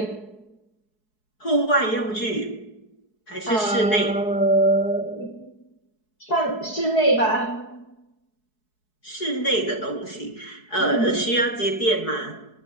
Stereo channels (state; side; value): late; right; 4.7 ms